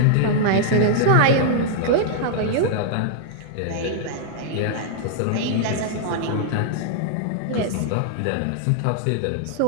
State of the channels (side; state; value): both; different; correlation -0.01